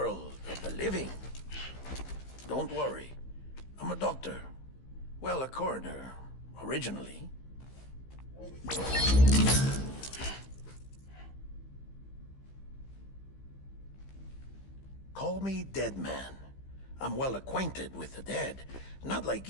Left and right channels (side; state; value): right; late; 15 ms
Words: of the living? Don't worry. I'm a doctor. Well, a coroner, originally. Call me Dead Man. I'm well acquainted with the dead. Not like